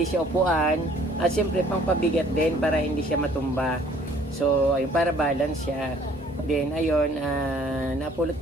siya upuan at syempre pangpabigat din para hindi siya matumba. So ayun, para balance siya. Then ayun, napulot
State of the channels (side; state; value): both; normal; correlation 0.57